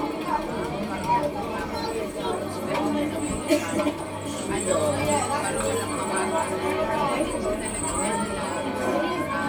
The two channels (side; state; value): both; identical; correlation 1.00